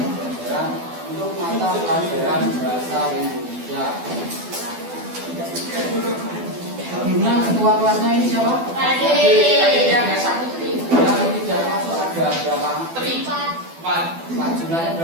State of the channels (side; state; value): left; late; 12 ms